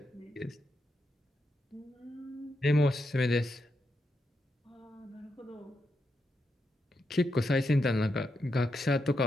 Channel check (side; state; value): both; normal; correlation 0.84